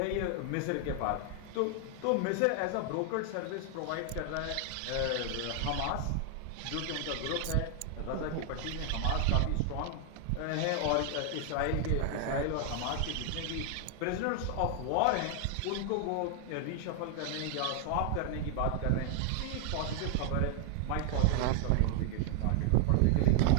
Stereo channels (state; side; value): different; both; correlation 0.00